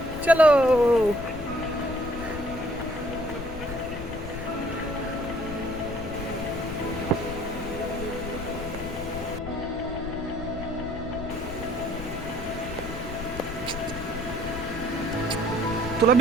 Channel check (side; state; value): left; noise; rumble, 10 dB below the sound